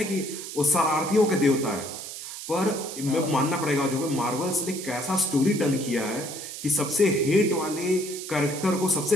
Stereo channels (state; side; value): noise; right; hiss, 10 dB below the sound